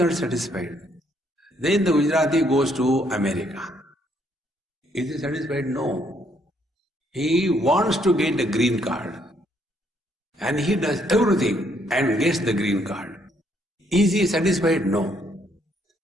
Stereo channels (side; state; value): both; normal; correlation 0.70